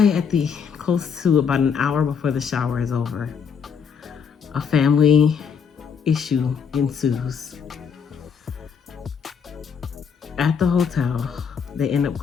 at the close to about an hour before the shower is over, a family issue ensues. At the hotel, they end up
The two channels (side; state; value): right; quieter; 6.7 dB